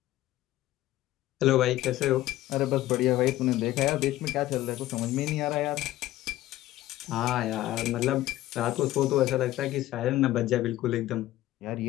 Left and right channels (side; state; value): right; quieter; 15.2 dB